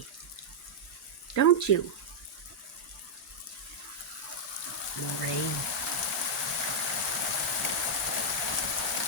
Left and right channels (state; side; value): normal; both; correlation -0.05